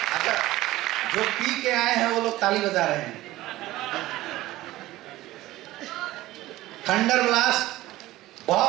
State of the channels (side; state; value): left; quieter; 16.8 dB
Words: अच्छा जो पी के आए हैं वो लोग ताली बजा रहे हैं। थंडर ब्लास्ट,